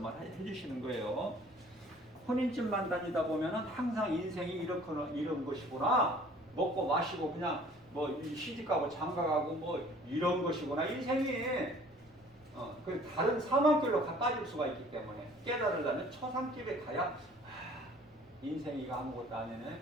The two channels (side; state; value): left; noise; rumble, 29 dB below the sound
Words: 해주시는 거예요. 혼인집만 다니다 보면 항상 인생이 이런 것이구나. 먹고 마시고 그냥 뭐 시집가고 장가가고 뭐 이런 것이구나. 인생이 그 다른 사망길로 빠질 수가 있기 때문에 깨달으려면 초상집에 가야 인생이 아무것도 아니네.